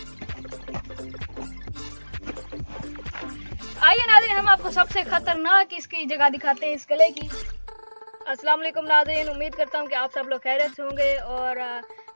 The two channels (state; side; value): inverted; both; correlation -1.00